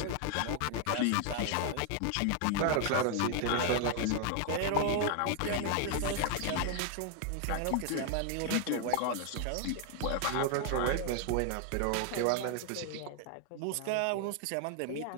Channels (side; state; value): both; different; correlation 0.00